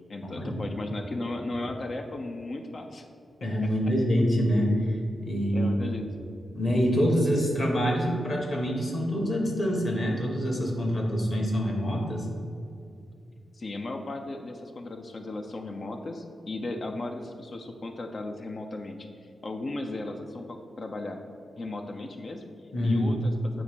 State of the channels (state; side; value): normal; both; correlation 0.87